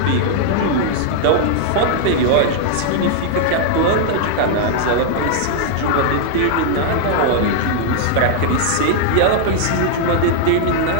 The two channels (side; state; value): both; different; correlation -0.01